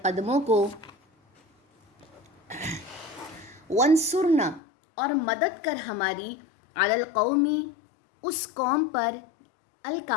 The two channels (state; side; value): drops out; right; at 4.6 s